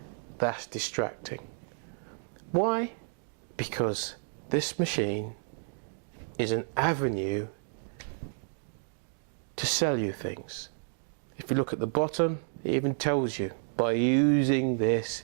That's distracting. Why? Because this machine is an avenue to sell you things. If you look at the bottom, it even tells you, by using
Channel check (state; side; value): silent; left; digital silence